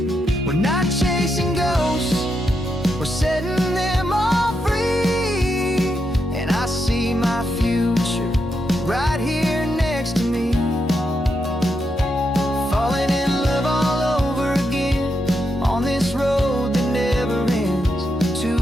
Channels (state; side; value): normal; both; correlation 0.83